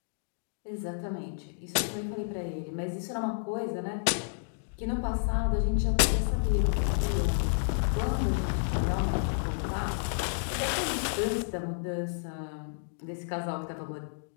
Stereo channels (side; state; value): right; silent; digital silence